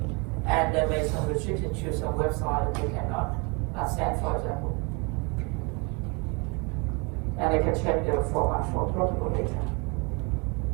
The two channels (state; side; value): quieter; left; 30.9 dB